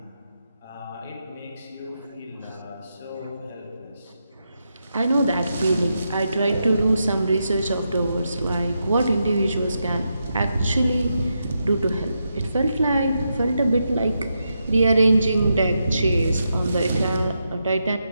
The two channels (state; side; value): inverted; both; correlation -0.85